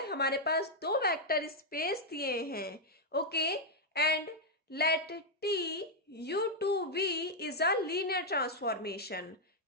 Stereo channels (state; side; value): normal; both; correlation -0.01